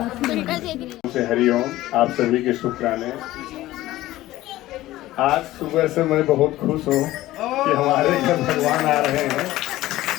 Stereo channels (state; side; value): quieter; right; 16.1 dB